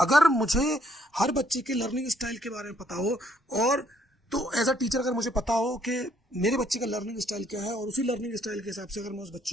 मुझे हर बच्चे के लर्निंग स्टाइल के बारे में पता हो और तो एज अ टीचर अगर मुझे पता हो कि मेरे बच्चे का लर्निंग स्टाइल क्या है और उसी लर्निंग स्टाइल के हिसाब से अगर मैं उस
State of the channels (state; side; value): normal; both; correlation 0.68